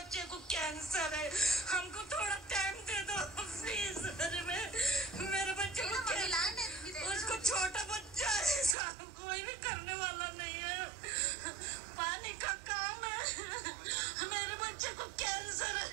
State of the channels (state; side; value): drops out; left; at 8.8 s